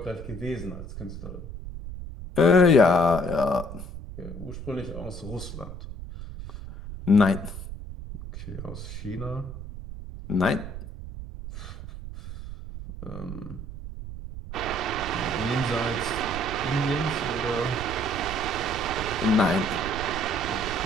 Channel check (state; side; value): noise; right; rumble, 10 dB below the sound